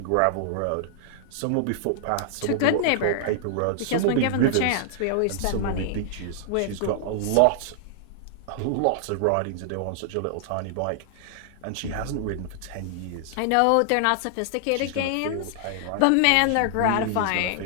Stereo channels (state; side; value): different; both; correlation -0.01